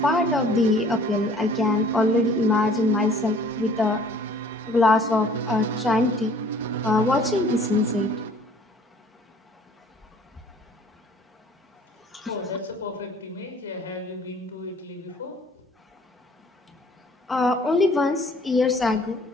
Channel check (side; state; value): both; normal; correlation 0.53